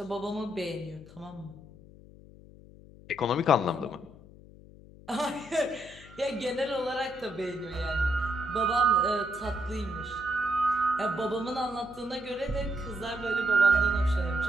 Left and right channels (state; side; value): noise; left; hum, 20 dB below the sound